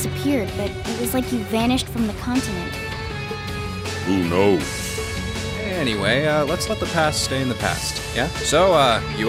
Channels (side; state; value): both; identical; correlation 1.00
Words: but it was like you vanished from the continent. Who knows? Anyway, let's let the past stay in the past, yeah? So,